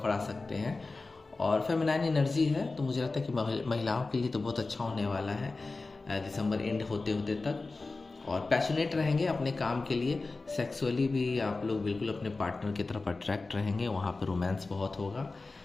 आ सकते हैं। और फेमिनाइन एनर्जी है, तो मुझे लगता है कि महिलाओं के लिए तो बहुत अच्छा होने वाला है दिसंबर एंड होते होते तक। और पैशनेट रहेंगे अपने काम के लिए, सेक्सुअली भी आप लोग बिल्कुल अपने पार्टनर की तरफ अट्रैक्ट रहेंगे, वहाँ पर रोमांस बहुत होगा,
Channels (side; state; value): right; quieter; 3.6 dB